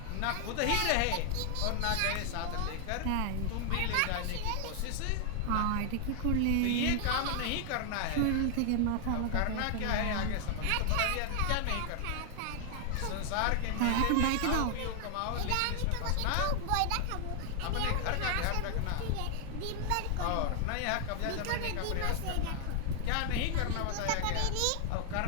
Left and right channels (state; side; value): different; both; correlation 0.00